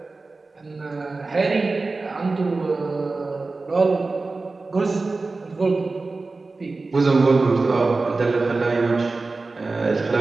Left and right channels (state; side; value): quieter; left; 3.6 dB